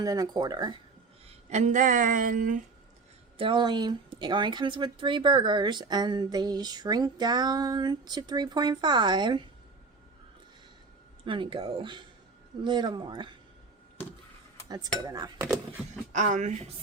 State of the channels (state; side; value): quieter; left; 4.3 dB